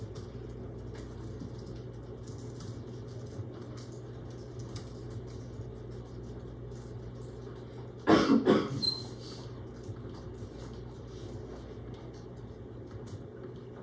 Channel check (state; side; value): identical; both; correlation 1.00